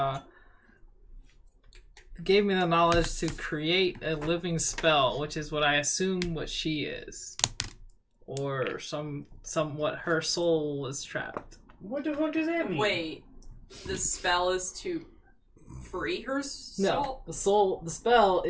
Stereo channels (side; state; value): both; identical; correlation 1.00